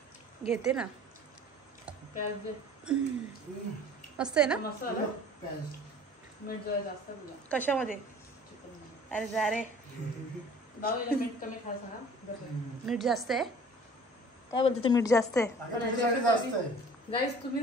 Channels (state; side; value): normal; both; correlation 0.48